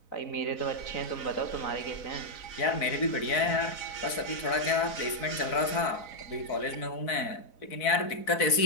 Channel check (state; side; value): late; right; 4.0 ms